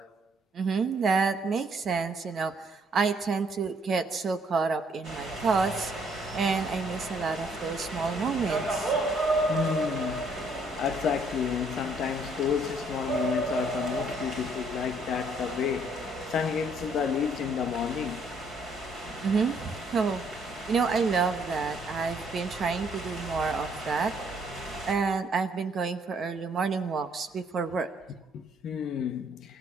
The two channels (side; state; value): both; normal; correlation 0.66